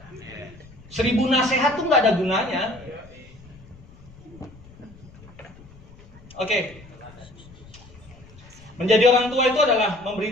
1000 nasihat tuh nggak ada gunanya. Oke. Menjadi orang tua itu adalah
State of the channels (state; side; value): noise; left; rumble, 22 dB below the sound